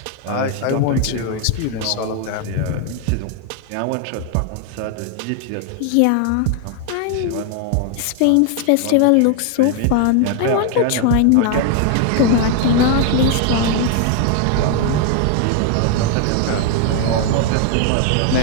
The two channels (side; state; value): both; different; correlation 0.00